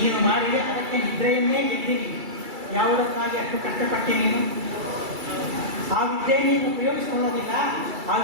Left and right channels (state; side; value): late; left; 2.3 ms